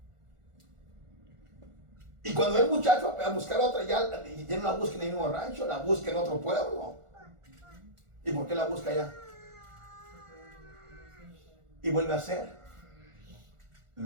Y cuando el muchacho va a buscar otra, ya no la busca en el mismo rancho, la busca en otro pueblo. ¿Y por qué la busca allá? Y vuelve a hacer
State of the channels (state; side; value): late; left; 1.4 ms